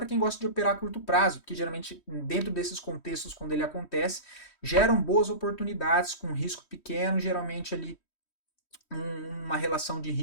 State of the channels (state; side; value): late; right; 3.1 ms